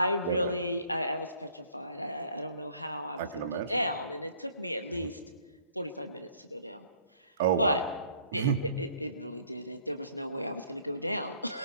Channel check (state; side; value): inverted; both; correlation -0.59